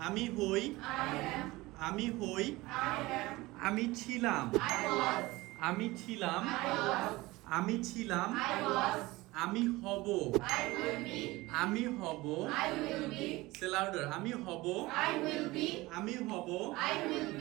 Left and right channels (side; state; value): left; quieter; 20.4 dB